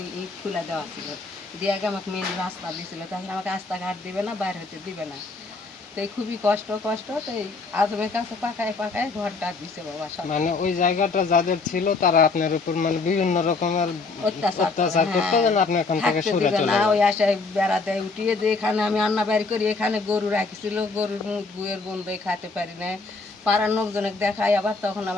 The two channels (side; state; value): right; quieter; 3.9 dB